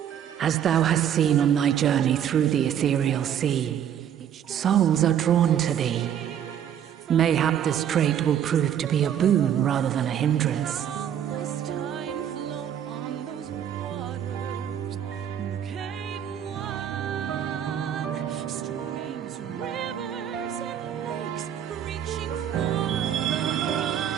As thou hast seen on thy journey through the ethereal sea, souls are drawn to thee. Mayhap this trait will prove to be a boon rather than a hindrance.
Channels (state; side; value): quieter; left; 9.6 dB